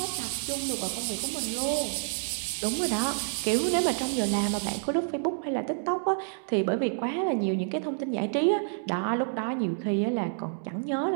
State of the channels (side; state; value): left; silent; digital silence